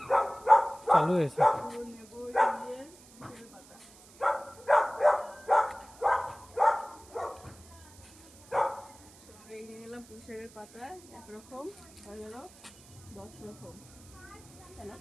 চালু হয়েছে। এই নিয়ে নিলাম পুঁই শাকের পাতা, একরকম হয়ে গেল 10 রকম। তেলা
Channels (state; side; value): noise; right; hiss, 23 dB below the sound